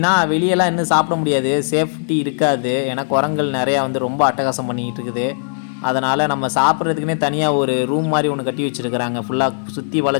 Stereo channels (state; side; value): silent; right; digital silence